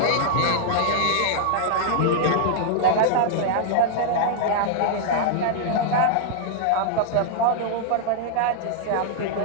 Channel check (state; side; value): different; both; correlation -0.01